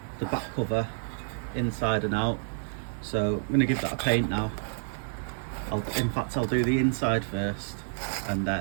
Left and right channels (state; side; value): silent; left; digital silence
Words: the back cover inside and out. So I'm going to give that a paint now. In fact, I'll do the inside first, and